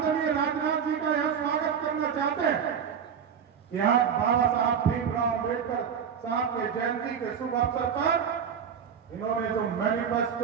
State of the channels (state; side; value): quieter; left; 7.5 dB